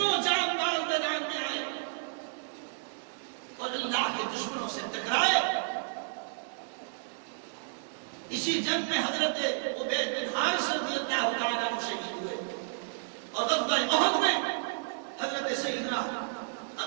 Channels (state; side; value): silent; left; digital silence